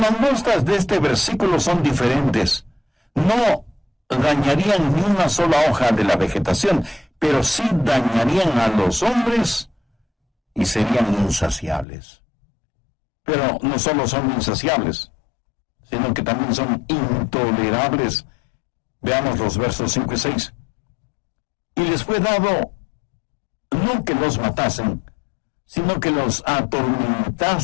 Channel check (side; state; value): right; drops out; at 11.9 s